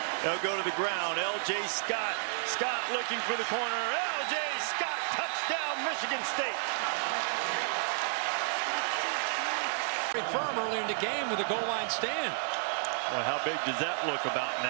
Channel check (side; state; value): left; silent; digital silence